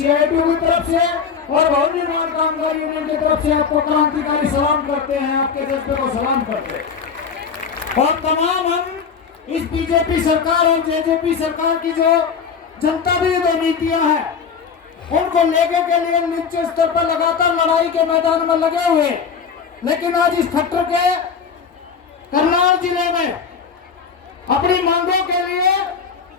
की तरफ से और भवन निर्माण कामगार यूनियन की तरफ से आपको क्रांतिकारी सलाम करते हैं, आपके जज्बे को सलाम करते हैं। और तमाम हम इस बीजेपी सरकार और जेजेपी सरकार की जो जनता विरोधी नीतियां हैं उनको लेके के लिए निचले स्तर पर लगातार लड़ाई के मैदान में लगे हुए, लेकिन आज इस खट्टर के करनाल जिले में अपनी मांगों के लिए,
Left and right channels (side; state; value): right; quieter; 6.2 dB